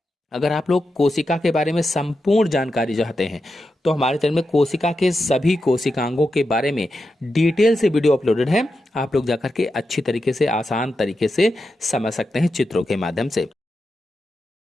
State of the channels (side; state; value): both; normal; correlation 0.88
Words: अगर आप लोग कोशिका के बारे में संपूर्ण जानकारी चाहते हैं तो हमारे चैनल में कोशिका के सभी कोशिकांगों के बारे में डिटेल से वीडियो अपलोडेड है। आप लोग जाकर के अच्छी तरीके से, आसान तरीके से समझ सकते हैं चित्रों के माध्यम से।